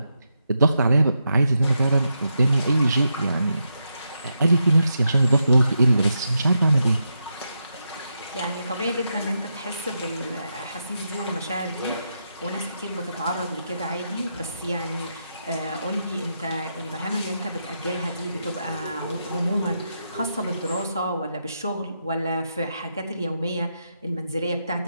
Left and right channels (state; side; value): inverted; both; correlation -0.84